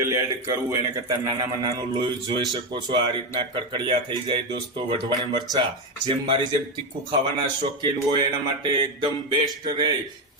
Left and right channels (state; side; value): normal; both; correlation 0.11